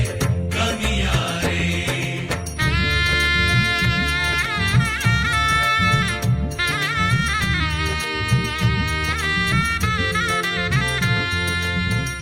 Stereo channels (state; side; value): identical; both; correlation 1.00